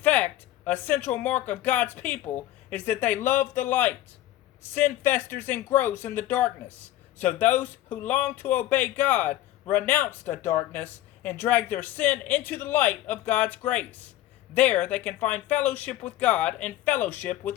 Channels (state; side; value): quieter; right; 14.5 dB